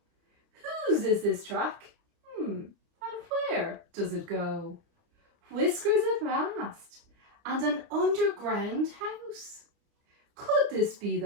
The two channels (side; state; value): left; late; 29 ms